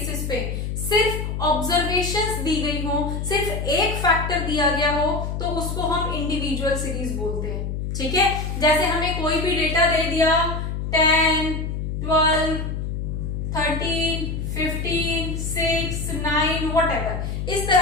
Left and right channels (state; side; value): noise; left; hum, 3 dB below the sound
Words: पे सिर्फ ऑब्जर्वेशंस दी गई हो, सिर्फ एक फैक्टर दिया गया हो, तो उसको हम इंडिविजुअल सीरीज बोलते हैं, ठीक है। जैसे हमें कोई भी डेटा दे दिया, 10, 12, 13, 15, 6, 9 व्हाटएवर, इस